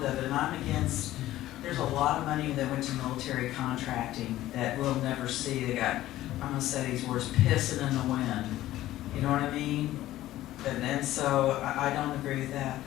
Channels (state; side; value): quieter; right; 14.8 dB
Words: of it, and I'm against, there's a lot of money that went to military contracting that we'll never see. They got, I'm going to say these words, pissing in the wind. You know what I mean? And so I don't agree with that.